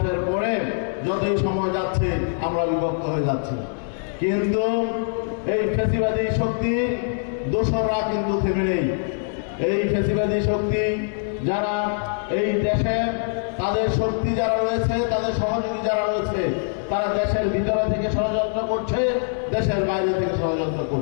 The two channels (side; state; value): right; silent; digital silence